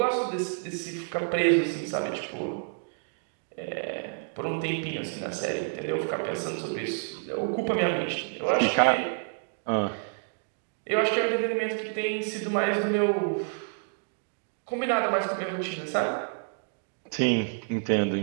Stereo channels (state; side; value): silent; left; digital silence